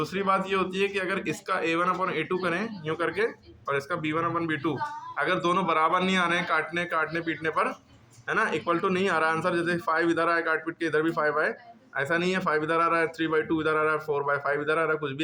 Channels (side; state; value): both; identical; correlation 1.00